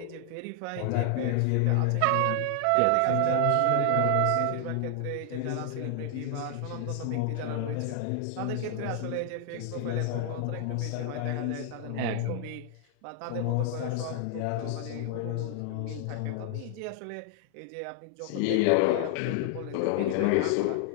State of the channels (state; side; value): different; both; correlation 0.00